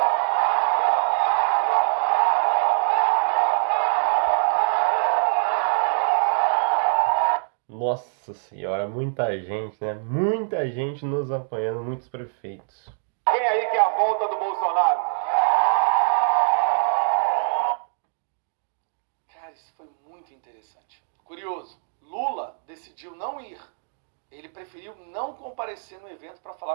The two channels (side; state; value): left; silent; digital silence